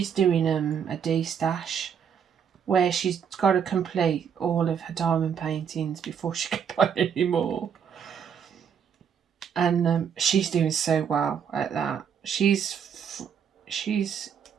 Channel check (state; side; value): quieter; left; 7.6 dB